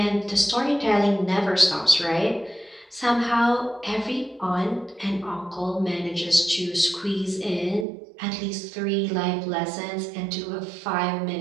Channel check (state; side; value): drops out; left; at 7.9 s